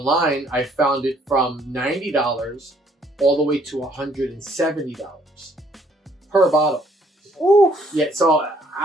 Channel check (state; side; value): normal; both; correlation 0.65